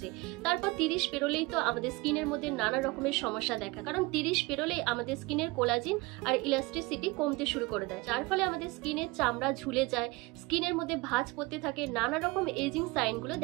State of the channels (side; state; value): left; quieter; 24.0 dB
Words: তারপর 30 পেরোলেই তো আমাদের স্কিনের মধ্যে নানা রকমের সমস্যা দেখা, কারণ 30 পেরোলেই আমাদের স্কিনের কোলাজিন আর ইলাস্টিসিটি কমতে শুরু করে দেয়, যার ফলে আমাদের স্কিনের চামড়া ঝুলে যায়, স্কিনের মধ্যে ভাঁজ পড়তে থাকে, নানা রকম এজিং সাইনগুলো